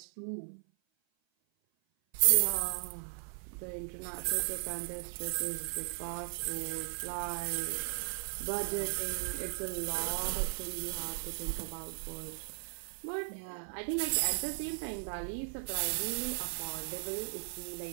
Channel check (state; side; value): silent; left; 53 dB below the other